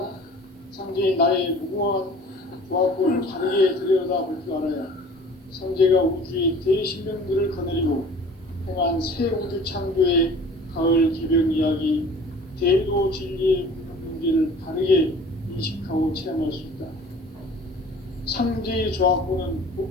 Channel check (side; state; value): both; normal; correlation 0.46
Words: 상제인 나의 무궁한 조화권을 다르게 들여다볼 줄 알아야 상제가 우주의 대신명들을 거느리고 행한 새 우주 창조의 가을 개벽 이야기, 대도 진리의 문제를 다르게 인식하고 체험할 수 있다. 상제의 조화권은